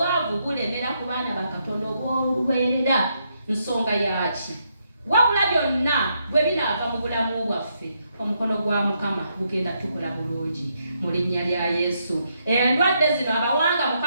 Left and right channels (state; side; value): inverted; both; correlation -0.78